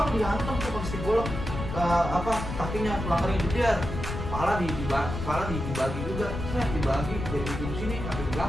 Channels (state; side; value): noise; left; rumble, 6 dB below the sound